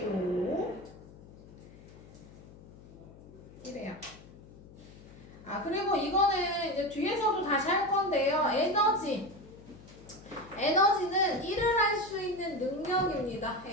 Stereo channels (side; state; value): left; noise; hum, 19 dB below the sound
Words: 이래요. 아, 그리고 이거는 이제 뒤에서도 다시 할 건데요. 에너지는 일을 할 수 있는 능력입니다.